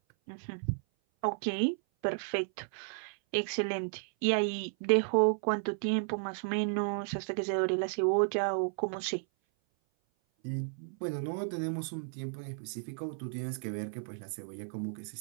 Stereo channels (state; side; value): silent; left; 55 dB below the other